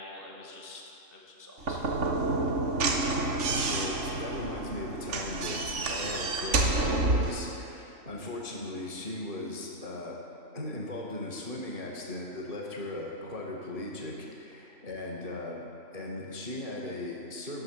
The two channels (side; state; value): left; late; 3.4 ms